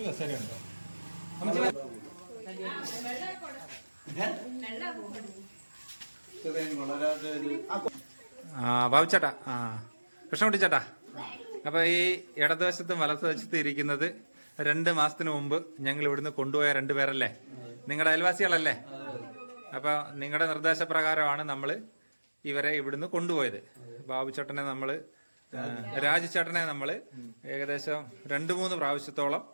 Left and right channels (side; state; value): both; inverted; correlation -1.00